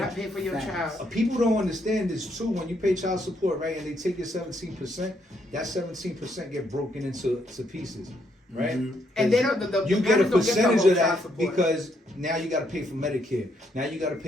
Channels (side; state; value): both; normal; correlation 0.74